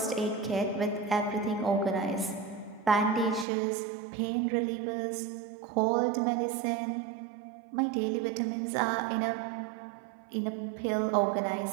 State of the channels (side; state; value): left; drops out; at 3.5 s